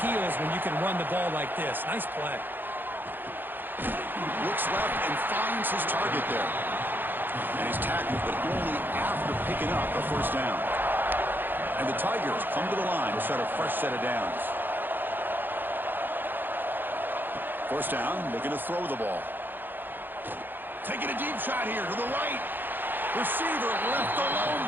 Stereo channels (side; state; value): left; late; 0.093 ms